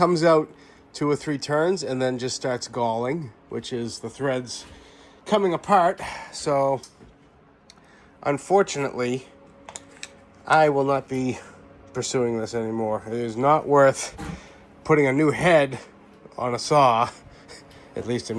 out 2 or 3 turns and then just starts galling, which is the threads coming apart. So unfortunately, I will not be pursuing this anymore. It is not worth putting a new head on a saw, at least in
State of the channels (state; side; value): identical; both; correlation 1.00